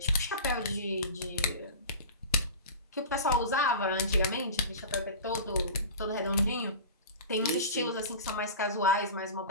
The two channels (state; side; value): inverted; both; correlation -0.32